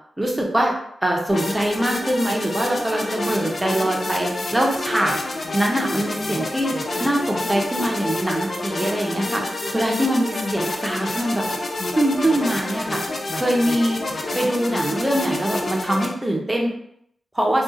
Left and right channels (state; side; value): normal; both; correlation 0.92